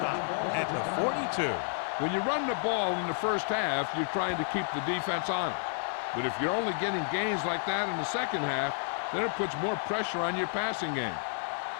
at the 42. When you run the ball in the first half, you're trying to keep the defense on it. But if you're only getting gains like that in the second half, then it puts more pressure on your passing game.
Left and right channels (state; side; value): silent; right; 57 dB below the other